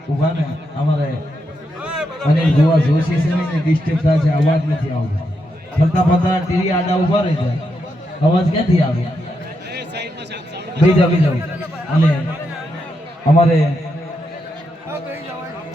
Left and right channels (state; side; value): normal; both; correlation 0.83